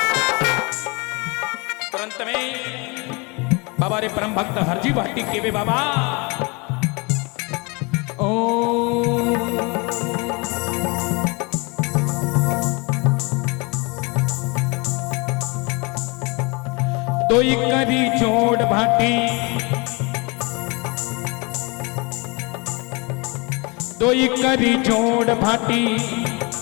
बाबा रे परम भक्त हरजी भाटी केवे बाबा ओ दोई करी जोड़ भाटी, दोई करी जोड़ भाटी,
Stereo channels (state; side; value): quieter; right; 28.9 dB